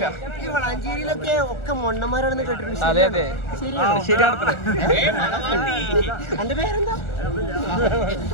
വളാഞ്ചേരിയിലൊക്കെ ഒക്കെ മൊണ്ണന്മാരാണെന്ന് കേട്ടിട്ടുണ്ട്. അതെ അതെ, ശരിയാണ്. എന്റെ പേരെന്താ?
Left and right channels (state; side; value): late; right; 1.4 ms